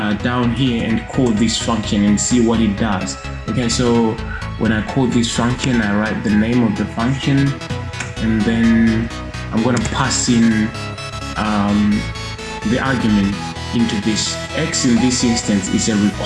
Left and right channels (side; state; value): both; identical; correlation 1.00